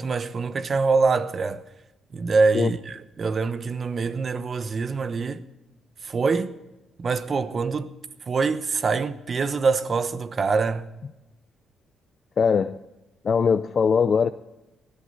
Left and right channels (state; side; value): normal; both; correlation 0.85